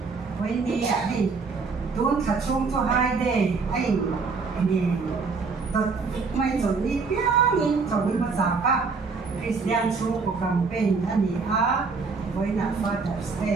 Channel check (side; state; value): left; quieter; 4.6 dB